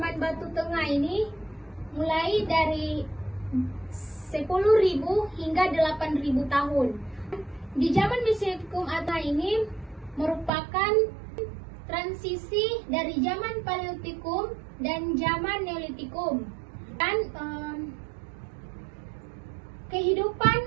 batu tengah ini mulai dari 10.000 hingga 8.000 tahun. Di zaman Mesolitikum atau ini merupakan transisi dari zaman Paleolitikum dan zaman Neolitikum. Dan kehidupan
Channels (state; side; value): drops out; left; at 10.5 s